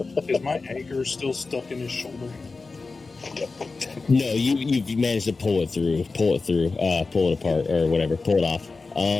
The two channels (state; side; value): quieter; right; 4.0 dB